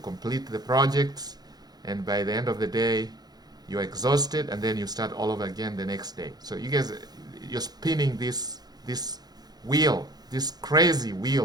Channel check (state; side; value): late; left; 0.19 ms